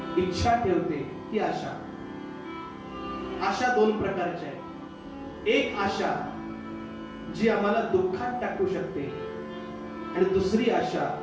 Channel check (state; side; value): identical; both; correlation 1.00